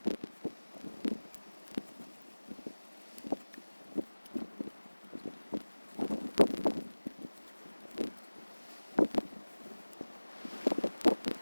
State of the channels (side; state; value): both; inverted; correlation -1.00